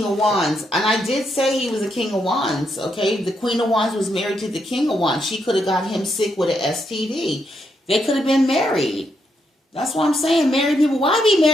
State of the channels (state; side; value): normal; both; correlation 0.79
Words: of Wands. And I did say he was a King of Wands, okay? The Queen of Wands was married to the King of Wands. She could have got him sick with an STD. They could have been married. That's what I'm saying. Married people, why be